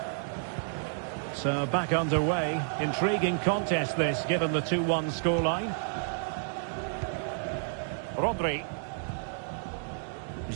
So back underway. Intriguing contest this, given the 2-1 scoreline. Rodri.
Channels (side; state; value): left; silent; digital silence